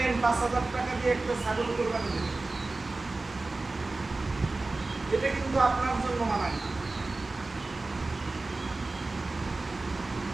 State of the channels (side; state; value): left; quieter; 3.3 dB